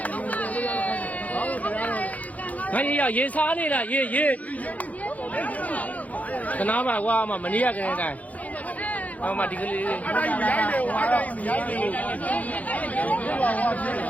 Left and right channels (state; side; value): late; right; 0.073 ms